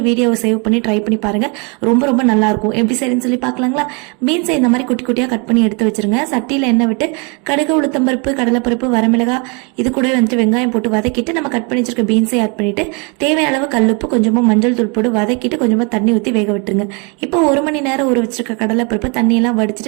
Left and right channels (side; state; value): left; quieter; 33.3 dB